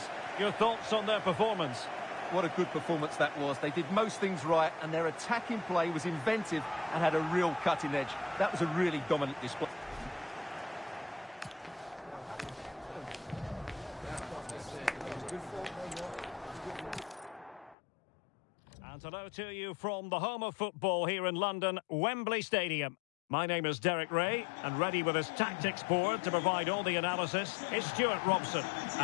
Your thoughts on their performance? What a good performance that was. They did most things right, and their attacking play was inventive and had a real cutting edge. That was a really dominant display. hello to you from the home of football here in London, Wembley Stadium. My name is Derek Ray, and ready with his tactics board to provide all the analysis is Stuart Robson.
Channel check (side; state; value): right; drops out; at 17.8 s